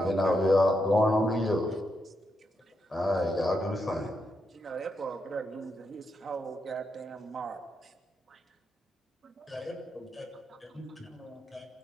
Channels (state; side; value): normal; both; correlation 0.83